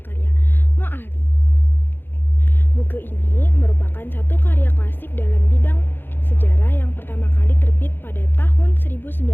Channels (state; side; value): late; right; 0.10 ms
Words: karya Moali. Buku ini merupakan satu karya klasik dalam bidang sejarah yang pertama kali terbit pada tahun